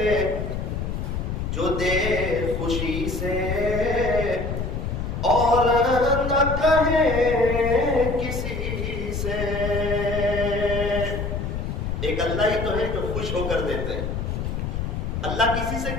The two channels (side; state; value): left; noise; rumble, 3 dB below the sound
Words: جو دے خوشی سے اور نہ کہے کسی سے ایک اللہ ہی تو ہے جو خوش ہو کر دیتے ہیں اللہ کسی سے